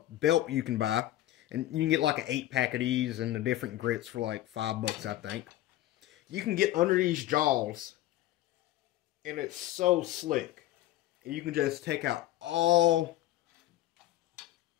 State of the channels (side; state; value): right; quieter; 14.7 dB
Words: belt you can buy, and you can get like an 8-pack of these and the different grits for like $5, I think. You can get under these jaws, and it's so slick. And you can just take out all,